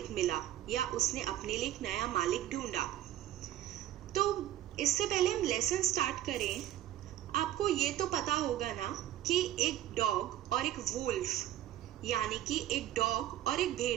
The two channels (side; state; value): left; quieter; 12.8 dB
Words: मिला या उसने अपने लिए एक नया मालिक ढूंढा। तो इससे पहले हम लेसन स्टार्ट करें, आपको ये तो पता होगा ना कि एक डॉग और एक वुल्फ यानी कि एक डॉग और एक